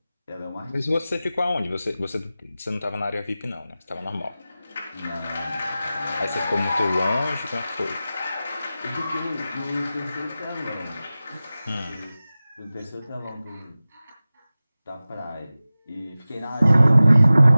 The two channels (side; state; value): both; inverted; correlation -0.96